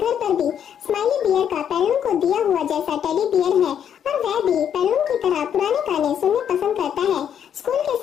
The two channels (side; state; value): right; quieter; 8.9 dB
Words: पर भी स्माइली बियर का पेनलून को दिया हुआ जैसा टेडी बियर है और वह भी पेनलून की तरह पुराने गाने सुनना पसंद करता है। स्कूल के